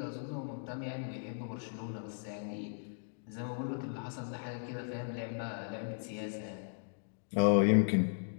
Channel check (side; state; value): right; silent; digital silence